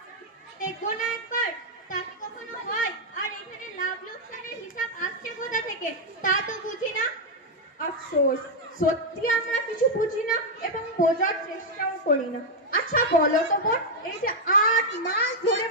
দেখবো না একবার? তা কি কখনো হয়? আর এখানে লাভ লোকসানের হিসাব আসছে কোথা থেকে তা তো বুঝি না। আফসোস, সত্যি আমরা কিছু বুঝি না এবং বোঝার চেষ্টাও করি না। আচ্ছা বলো তো বোন, এই যে 8 মাস ধরে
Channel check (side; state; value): both; normal; correlation -0.01